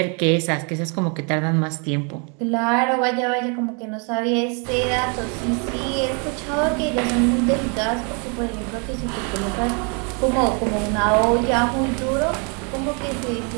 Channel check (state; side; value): quieter; left; 36.1 dB